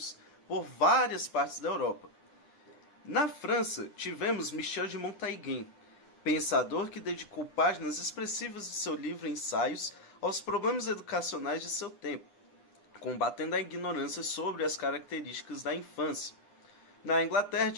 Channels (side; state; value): right; late; 9.9 ms